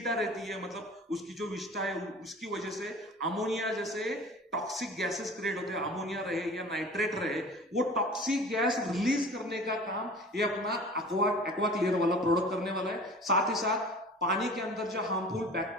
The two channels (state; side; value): normal; both; correlation 0.42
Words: रहती है, मतलब उसकी जो विष्ठा है उसकी वजह से अमोनिया जैसे टॉक्सिक गैसेस क्रिएट होते हैं, अमोनिया रहे या नाइट्रेट रहे, वो टॉक्सिक गैस रिलीज करने का काम ये अपना एक्वा क्लियर वाला प्रोडक्ट करने वाला है। साथ ही साथ पानी के अंदर जो हार्मफुल